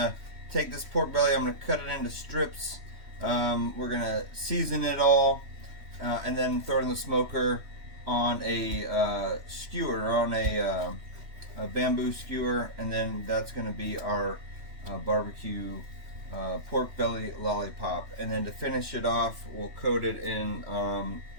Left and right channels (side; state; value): left; late; 3.1 ms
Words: take this pork belly, I'm going to cut it into strips. We're going to season it all and then throw it in the smoker on a skewer, or on a bamboo skewer, and then that's going to be our barbecue pork belly lollipop. And then to finish it off, we'll coat it in